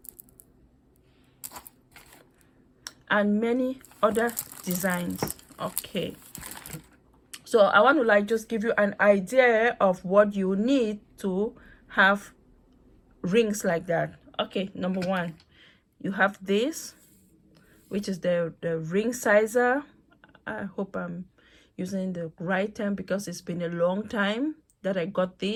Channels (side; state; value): both; identical; correlation 1.00